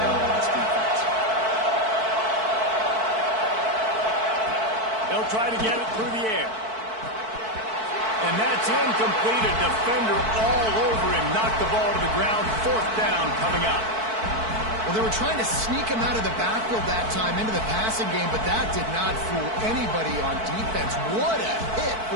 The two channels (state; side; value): late; left; 4.5 ms